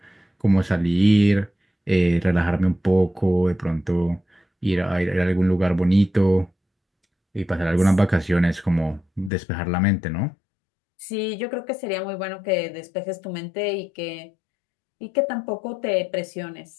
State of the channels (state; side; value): drops out; right; at 9.3 s